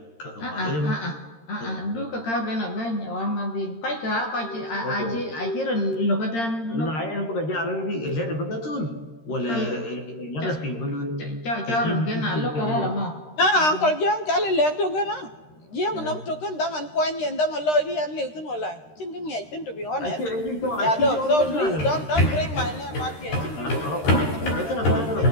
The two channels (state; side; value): late; right; 13 ms